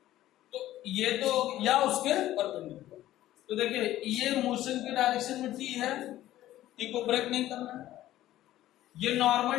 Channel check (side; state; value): right; quieter; 14.1 dB